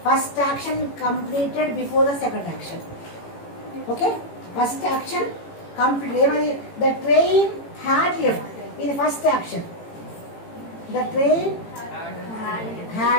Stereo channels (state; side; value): late; right; 18 ms